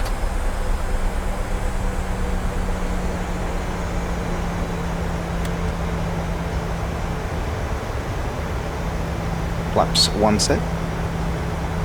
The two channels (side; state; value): both; identical; correlation 1.00